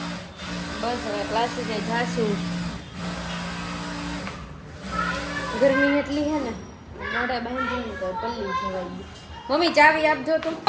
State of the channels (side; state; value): both; identical; correlation 1.00